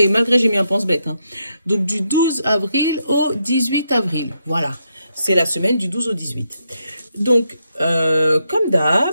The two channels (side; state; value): both; inverted; correlation -0.80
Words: malgré j'ai mis un pense-bête. Hein. Donc du 12 avril au 18 avril. Voilà, c'est la semaine du 12 au 18. Donc, comme